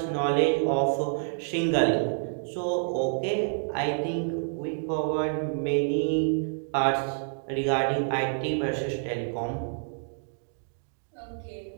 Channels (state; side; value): silent; left; digital silence